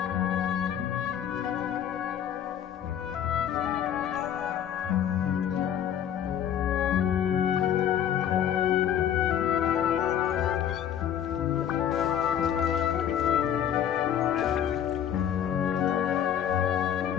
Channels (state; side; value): quieter; right; 9.6 dB